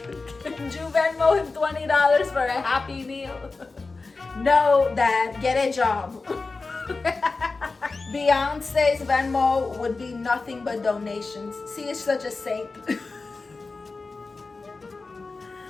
Can you Venmo him $20 for a Happy Meal? No, Dad, get a job. Beyonce's Venmo would be nothing but donations. She is such a saint.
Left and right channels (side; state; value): right; quieter; 3.9 dB